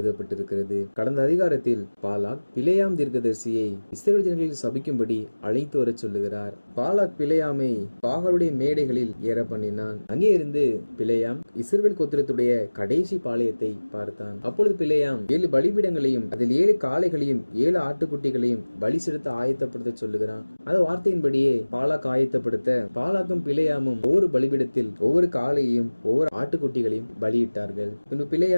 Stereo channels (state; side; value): inverted; both; correlation -1.00